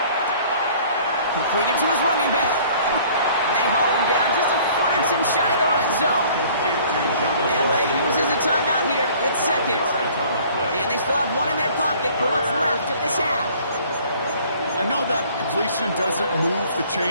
Completed to his running back. And they haul him down just a foot or 2 shy of the red zone. LA uses a timeout here. It's 2nd. And they still have 1 in their pocket for what's left of this half. I know that completion doesn't move the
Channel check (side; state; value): both; inverted; correlation -0.53